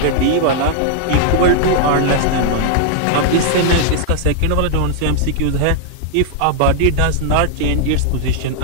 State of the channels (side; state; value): both; different; correlation -0.01